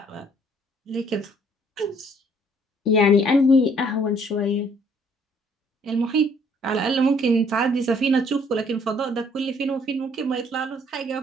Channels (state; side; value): normal; both; correlation 0.62